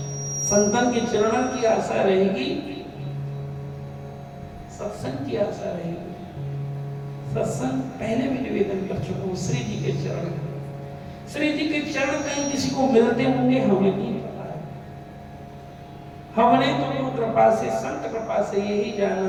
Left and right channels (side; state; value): both; identical; correlation 1.00